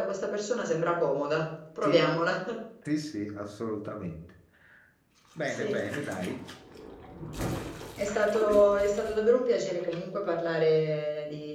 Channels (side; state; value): both; identical; correlation 1.00